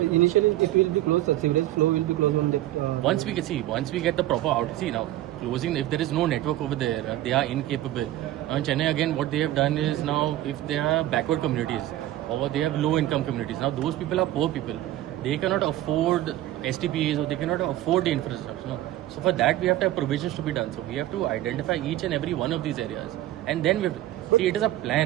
initially it will be closed, sewerage flow will be closed on the... Once we get the proper out. See now, closing. If there is no network over there, they are incapable. Now in Chennai again, what they have done is now if they are backward communities or they have low income communities, now those people are poor people. They cannot afford STPs or they cannot afford the infrastructure. No? So for that we have to have provisions to be done. So we have to identify each and every one of these areas, and then we see it is a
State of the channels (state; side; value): quieter; left; 14.6 dB